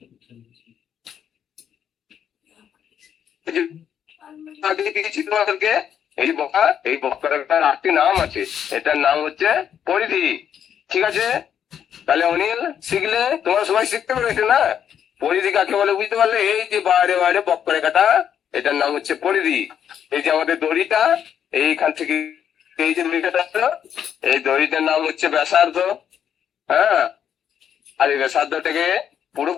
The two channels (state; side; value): quieter; right; 8.9 dB